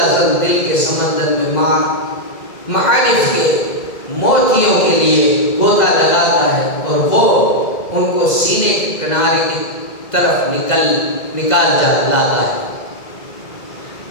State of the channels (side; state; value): right; late; 2.0 ms